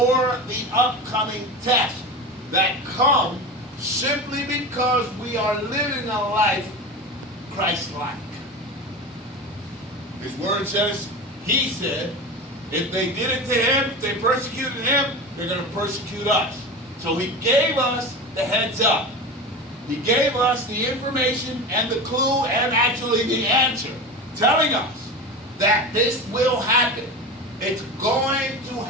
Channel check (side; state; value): both; normal; correlation 0.27